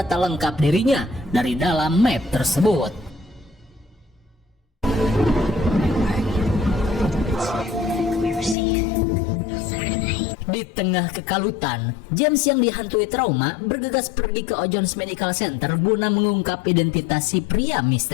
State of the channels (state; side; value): drops out; right; at 8.6 s